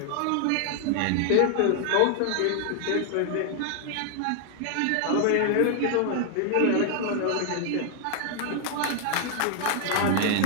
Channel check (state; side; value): different; both; correlation 0.00